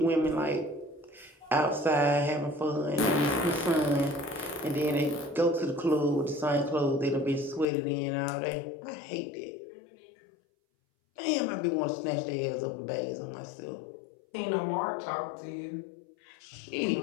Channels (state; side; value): drops out; right; at 7.7 s